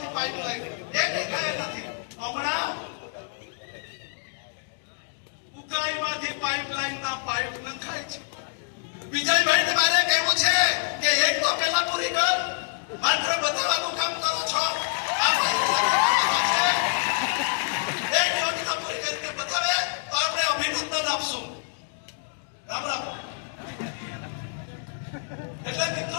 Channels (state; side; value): silent; right; digital silence